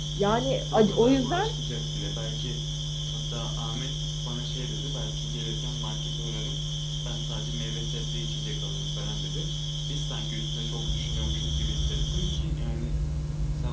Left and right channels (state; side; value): identical; both; correlation 1.00